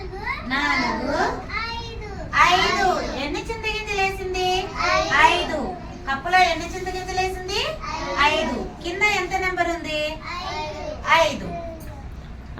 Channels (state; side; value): identical; both; correlation 1.00